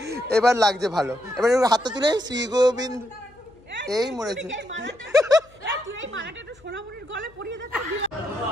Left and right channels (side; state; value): left; noise; hum, 28 dB below the sound